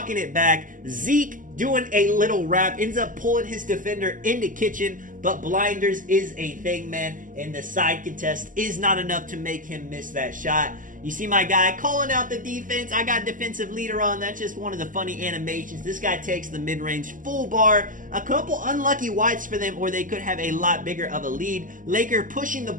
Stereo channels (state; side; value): late; left; 0.38 ms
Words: it back. Zeke doing a little wrap. Ends up pulling his defender into Kitchen. But blinders is a thing, man. And the side contest is not enough to make him miss that shot. You see my guy calling out the defense. I got defensive leader on. That's just one of the funny animations. This guy takes the mid-range full bar. A couple unlucky wides for them, or they could have a lot bigger of a lead. Laker pushing the